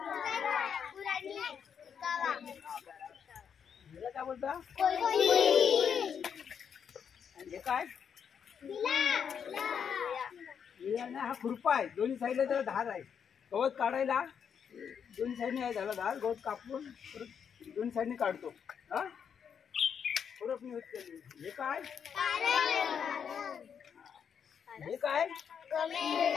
हिला काय बोलतात? हे काय? हा खुरपा आहे. दोन्ही साईडला त्याला धार आहे. गवत काढायला दोन्ही साईडने आहे त्याला धार. गवत कापून परत दोन्ही साईडने काढतो. हा खुरपणी होत. हे काय? हे काय?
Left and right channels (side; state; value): right; quieter; 7.4 dB